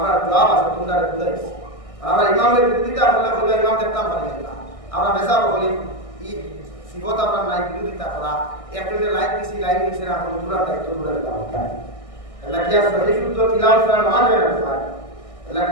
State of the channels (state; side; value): late; right; 1.6 ms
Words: জবাব আছে তোমরা বুঝাইছ আমরা ইমামের বিরোধিতা করলে বলে ইমাম দেখতাম পারি না আমরা বেশা বলি ই সিবত আমরা নাই বিরোধিতা করা একজনের লাইক দিছি লাইক দিছি না আমরা পুরো দায়িত্ব পুরো দিলাম আল্লাহ কি সহি শুদ্ধ তিলাওয়াত করা না হয় না আল্লাহ